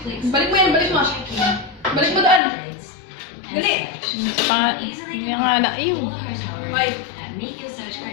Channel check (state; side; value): drops out; right; at 2.4 s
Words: Balik mo yan, balik mo. Balik mo doon. Dali. Yung nga na, ayun. Ay.